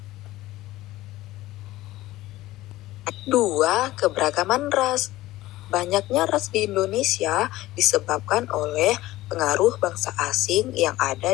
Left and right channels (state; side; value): quieter; right; 16.8 dB